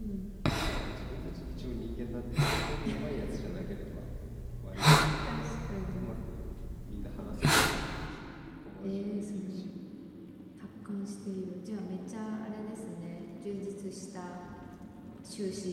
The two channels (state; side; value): identical; both; correlation 1.00